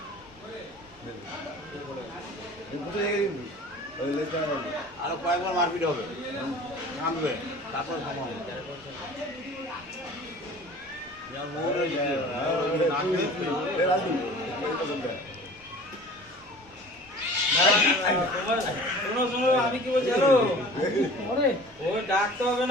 বুঝলি আরো কয়েকবার মারপিট হবে থামবে তারপর থামাবো আমি কি বলছি হ্যালো ও ডাকতে হবে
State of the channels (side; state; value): both; normal; correlation 0.43